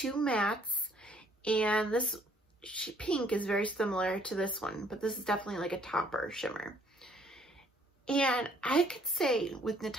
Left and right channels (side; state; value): both; normal; correlation 0.63